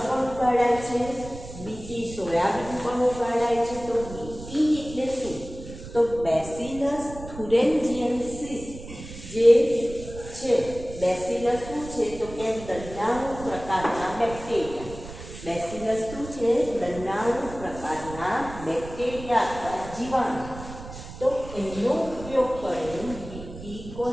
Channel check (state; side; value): noise; right; rumble, 13 dB below the sound